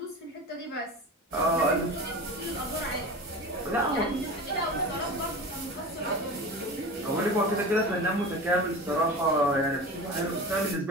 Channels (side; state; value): both; normal; correlation 0.31